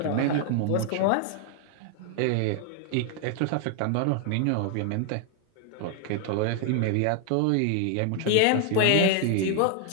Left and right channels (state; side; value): different; both; correlation 0.00